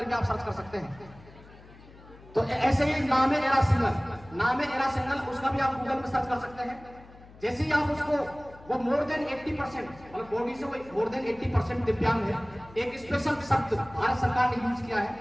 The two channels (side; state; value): left; noise; hum, 21 dB below the sound